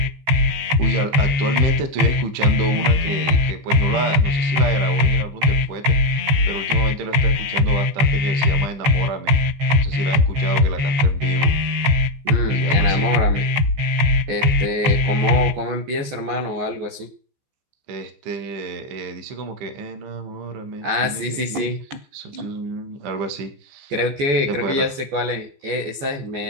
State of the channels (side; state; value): left; late; 14 ms